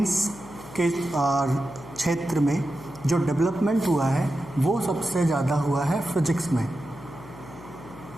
के क्षेत्र में जो डेवलपमेंट हुआ है वो सबसे ज़्यादा हुआ है फिजिक्स में,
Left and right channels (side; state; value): left; noise; hum, 17 dB below the sound